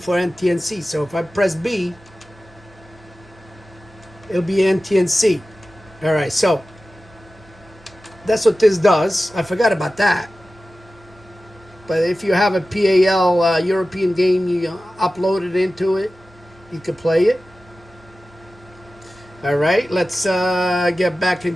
NTNC. So if I press B, it'll be NTNC. All right, so that's what this does. I forgot about that. But if you have a PAL European game, you upload it into it, you can play it. All right, let's get back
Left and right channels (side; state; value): both; normal; correlation 0.95